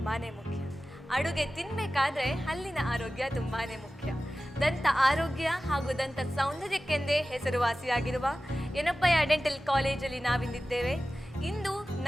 ಮುಖ್ಯ. ಅಡುಗೆ ತಿನ್ನಬೇಕಾದ್ರೆ ಹಲ್ಲಿನ ಆರೋಗ್ಯ ತುಂಬಾನೇ ಮುಖ್ಯ. ದಂತ ಆರೋಗ್ಯ ಹಾಗೂ ದಂತ ಸೌಂದರ್ಯಕ್ಕೆಂದೇ ಹೆಸರುವಾಸಿಯಾಗಿರುವ ಯೆನಪೋಯ ಡೆಂಟಲ್ ಕಾಲೇಜಲ್ಲಿ ನಾವಿಂದಿದ್ದೇವೆ. ಇಂದು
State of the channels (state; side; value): normal; both; correlation 0.95